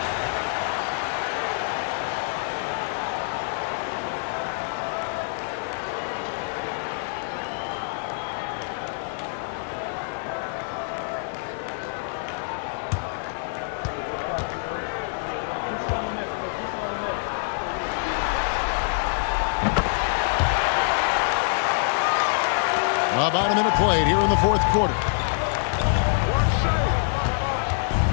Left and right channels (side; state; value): right; silent; digital silence